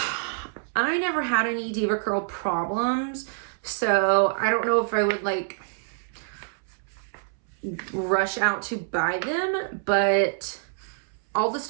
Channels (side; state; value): left; silent; 61 dB below the other